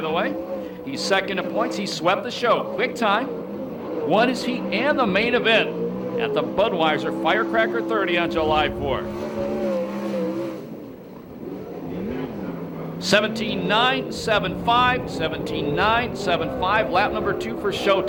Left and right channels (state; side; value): identical; both; correlation 1.00